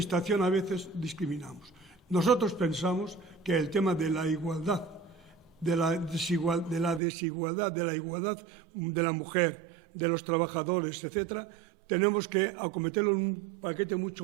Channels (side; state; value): left; drops out; at 7.0 s